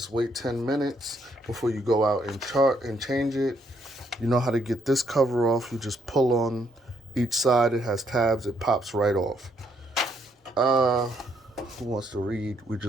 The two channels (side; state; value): both; normal; correlation 0.72